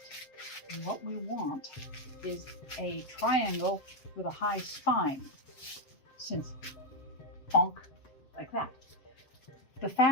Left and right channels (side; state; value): right; late; 7.8 ms